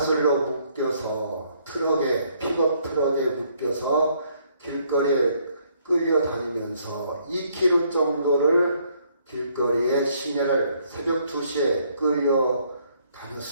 묶여서 픽업 트럭에 묶여서 길거리에 끌려다니면서 2km 정도를 길거리에 시내를 새벽 2시에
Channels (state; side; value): inverted; both; correlation -0.68